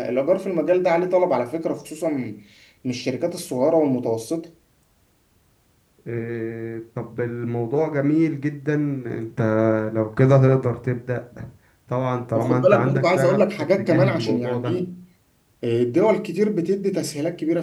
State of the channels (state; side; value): identical; both; correlation 1.00